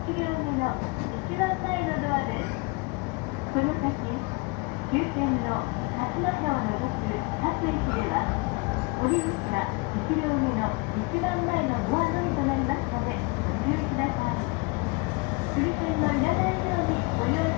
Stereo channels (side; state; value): right; quieter; 28.0 dB